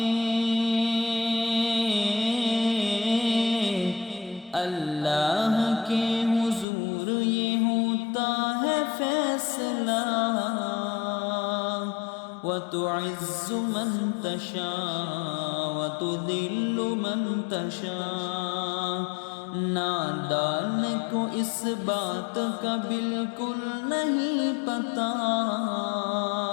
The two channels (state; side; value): drops out; right; at 6.7 s